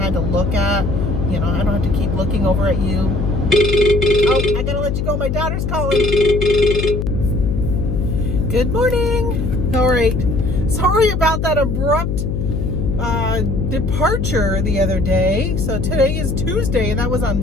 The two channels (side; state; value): left; noise; hum, 1 dB below the sound